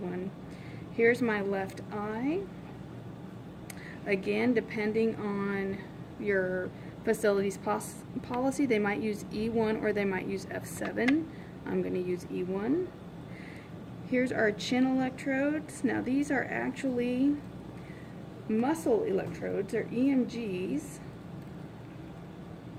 Here's my left eye. Again, depending on your facility's policy, they might use E1 or they might use F7. I'm going to use E1. Here's our chin electrodes. Now these are actually muscle electrodes, they're EMGs.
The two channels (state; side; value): identical; both; correlation 1.00